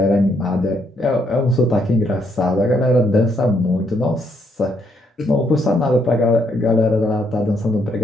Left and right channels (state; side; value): normal; both; correlation 0.73